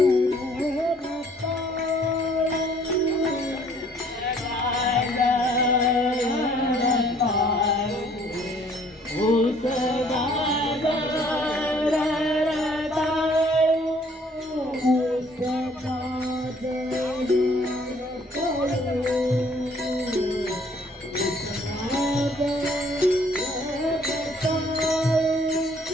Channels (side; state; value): both; normal; correlation 0.60